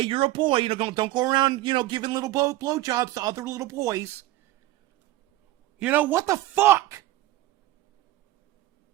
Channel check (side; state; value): left; quieter; 16.3 dB